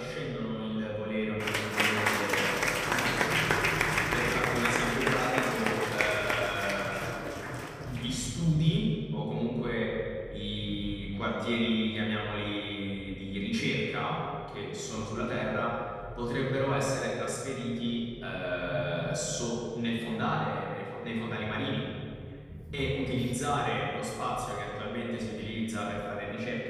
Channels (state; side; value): identical; both; correlation 1.00